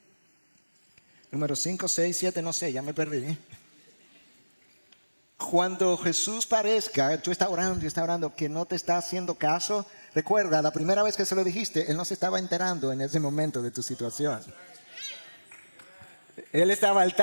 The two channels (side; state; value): both; inverted; correlation -1.00